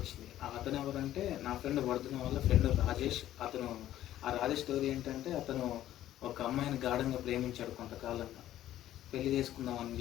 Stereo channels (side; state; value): right; quieter; 13.0 dB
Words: అతను ఎవరంటే నా ఫ్రెండ్ వర్ధన్ వాళ్ళ ఫ్రెండ్ రాజేష్. ఆ రాజేష్ స్టోరీ ఏంటంటే, అతను ఒక అమ్మాయిని గాఢంగా ప్రేమించాడు కొంతకాలంగా. పెళ్లి చేసుకుందామని